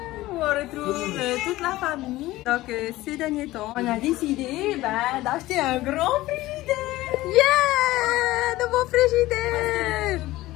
On retrouve toute la famille. Donc ces derniers temps, on a décidé d'acheter un grand frigidaire. Yeah! Nouveau frigidaire!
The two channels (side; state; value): right; quieter; 17.4 dB